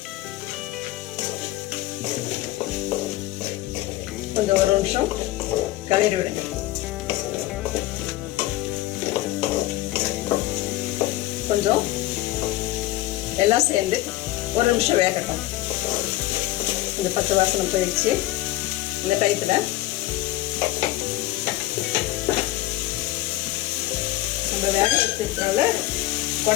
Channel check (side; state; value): right; quieter; 16.5 dB